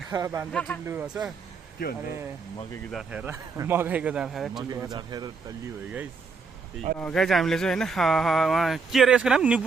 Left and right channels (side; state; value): left; quieter; 4.7 dB